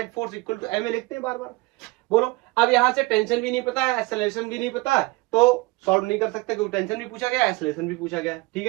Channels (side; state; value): left; quieter; 23.6 dB